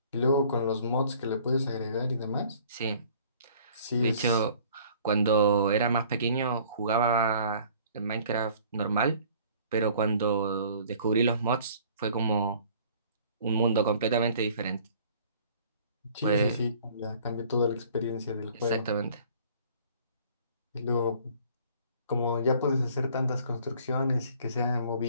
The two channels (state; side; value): inverted; both; correlation -0.53